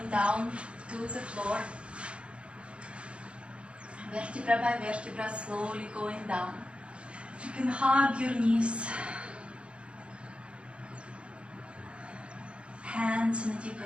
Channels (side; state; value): left; late; 0.059 ms